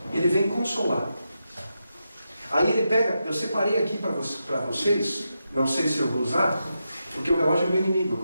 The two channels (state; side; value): inverted; both; correlation -0.87